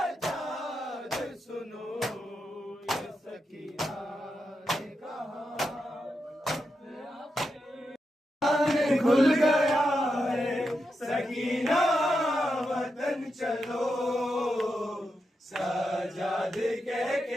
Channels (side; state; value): both; normal; correlation 0.86